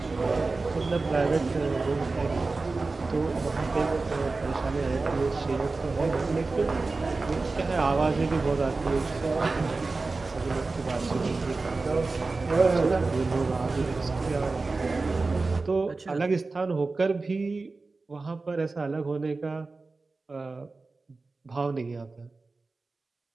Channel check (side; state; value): left; quieter; 3.7 dB